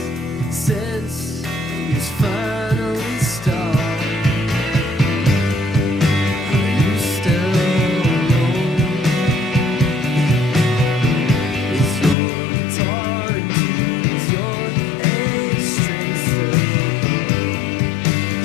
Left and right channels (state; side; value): drops out; right; at 12.2 s